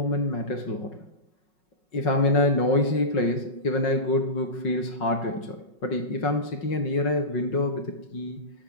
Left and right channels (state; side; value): late; right; 5.4 ms